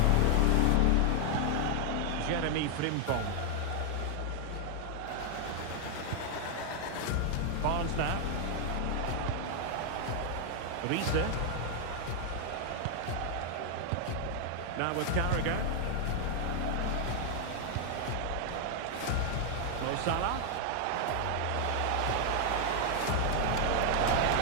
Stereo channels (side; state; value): both; different; correlation 0.00